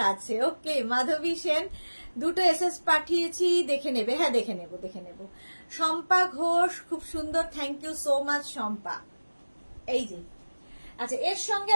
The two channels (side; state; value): both; inverted; correlation -1.00